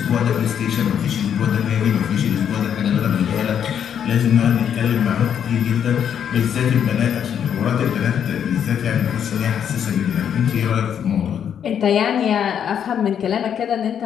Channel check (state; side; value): quieter; right; 8.6 dB